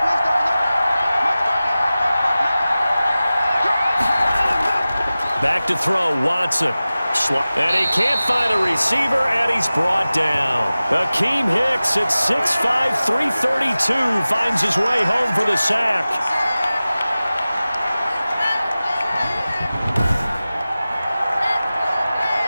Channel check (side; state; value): both; inverted; correlation -0.96